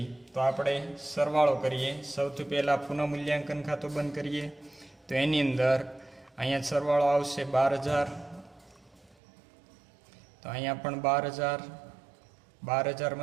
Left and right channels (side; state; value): left; drops out; at 9.2 s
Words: તો આપણે સરવાળો કરીએ. સૌથી પહેલાં પુનઃમૂલ્યાંકન ખાતું બંધ કરીએ તો એની અંદર અહીંયા સરવાળો આવશે 12,000. તો અહીંયા પણ 12,000.